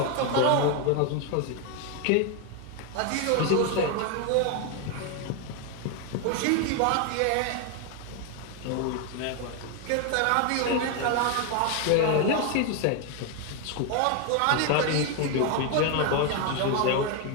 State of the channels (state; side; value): different; both; correlation 0.01